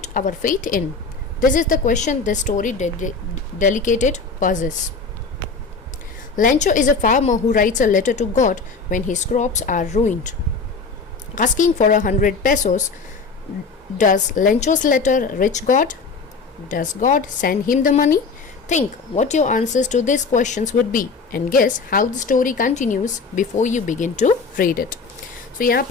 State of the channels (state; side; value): quieter; right; 4.5 dB